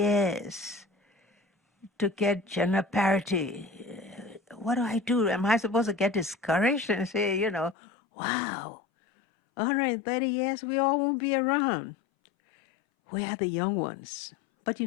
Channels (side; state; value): right; drops out; at 7.8 s